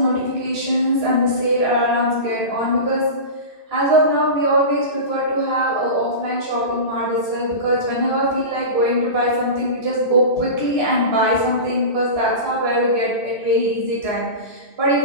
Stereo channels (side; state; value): left; late; 2.6 ms